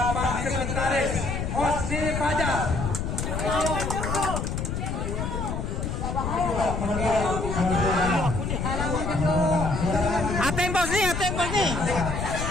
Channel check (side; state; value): left; noise; rumble, 3 dB below the sound